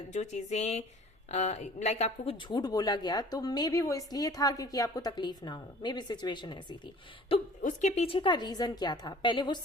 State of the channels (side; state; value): both; normal; correlation 0.49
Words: चीजें लाइक आपको कुछ झूठ बोला गया, तो मे बी वो इसलिए था क्योंकि आपको तकलीफ ना हो। मे बी सिचुएशन ऐसी थी, तो उसके पीछे का रीजन क्या था पहले वो